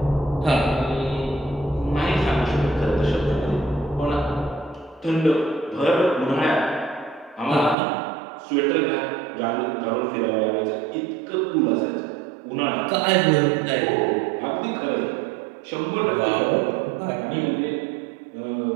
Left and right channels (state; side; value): drops out; left; at 7.8 s